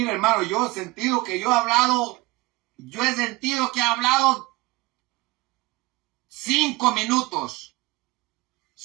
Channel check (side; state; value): left; quieter; 22.1 dB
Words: hermano, yo he sentido que he hablado 5 minutos.